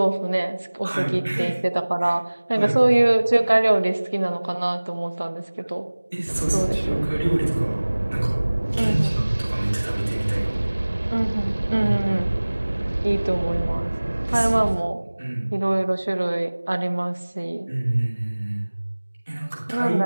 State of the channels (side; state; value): both; inverted; correlation -1.00